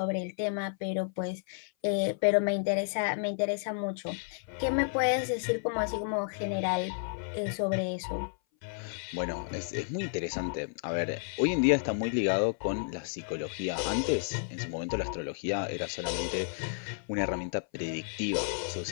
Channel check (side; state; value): right; silent; 57 dB below the other